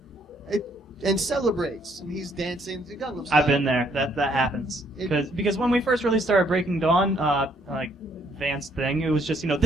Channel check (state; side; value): normal; both; correlation 0.67